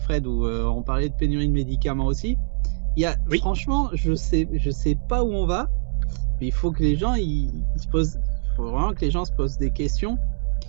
Fred, où on parlait de pénurie de médicaments aussi. Oui. Franchement, je sais pas où on va, mais il faut que les gens faut vraiment que les gens se posent des questions.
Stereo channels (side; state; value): left; silent; 63 dB below the other